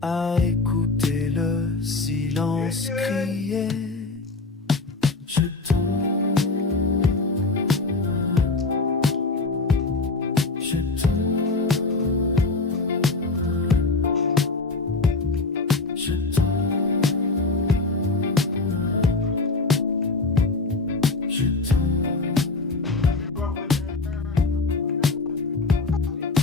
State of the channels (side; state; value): right; quieter; 3.6 dB